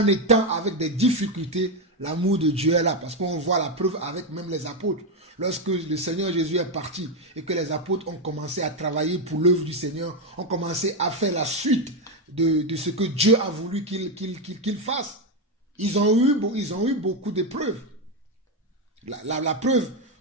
étant avec des difficultés, l'amour de Dieu est là. Parce qu'on voit la preuve avec même les apôtres. Lorsque le Seigneur Jésus est parti et que les apôtres ont commencé à travailler pour l'œuvre du Seigneur, ont commencé à faire la suite de ce que Dieu a voulu qu'ils fassent. Ils ont eu beaucoup d'épreuves. La preuve,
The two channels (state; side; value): normal; both; correlation 0.07